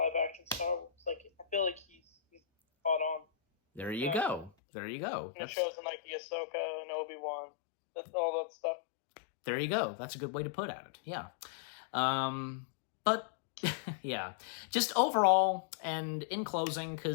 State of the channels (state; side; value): drops out; right; at 4.5 s